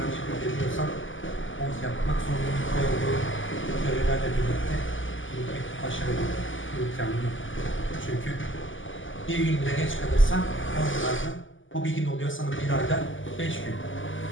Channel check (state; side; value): late; right; 0.57 ms